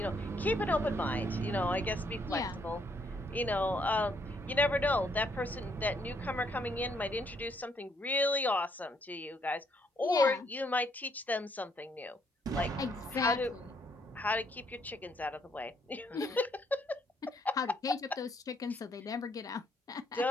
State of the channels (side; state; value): both; normal; correlation 0.70